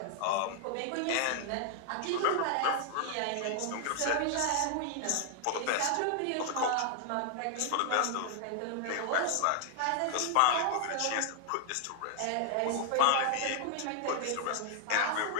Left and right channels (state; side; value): different; both; correlation 0.00